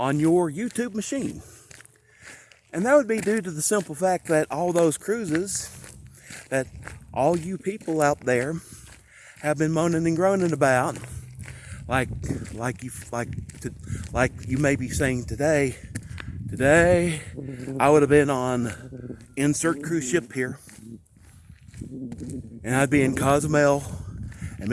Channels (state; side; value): identical; both; correlation 1.00